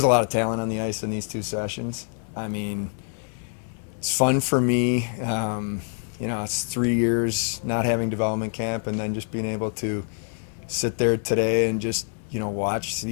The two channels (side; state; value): right; silent; 61 dB below the other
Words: a lot of talent on the ice in these 2 sessions. I mean, it's fun for me. It's 3 years not having development camp, and then just being able to sit there today and just watch